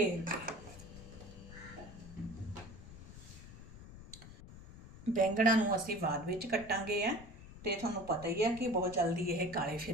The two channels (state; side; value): noise; left; rumble, 15 dB below the sound